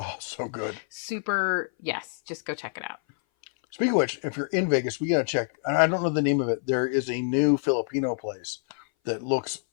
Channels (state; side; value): silent; right; 58 dB below the other